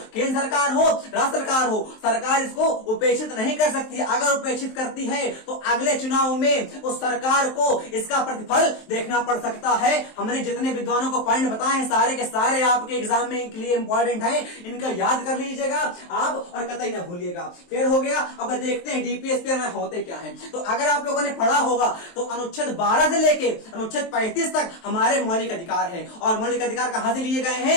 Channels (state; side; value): late; right; 23 ms